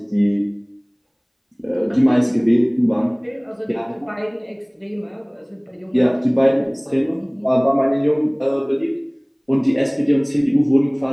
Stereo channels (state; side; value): identical; both; correlation 1.00